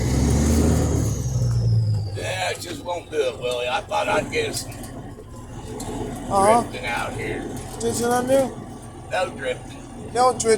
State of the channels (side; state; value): both; identical; correlation 1.00